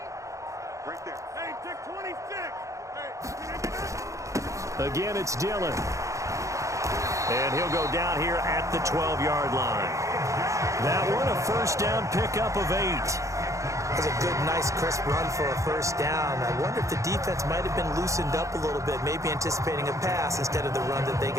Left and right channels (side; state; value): left; late; 0.15 ms